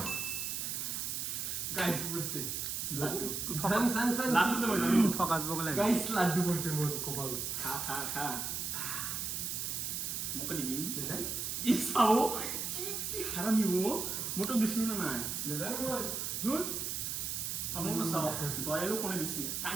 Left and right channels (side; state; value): right; noise; hiss, 2 dB below the sound